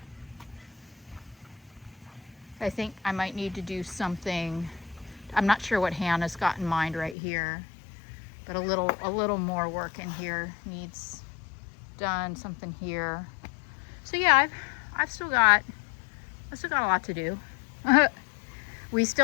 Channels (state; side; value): drops out; right; at 7.2 s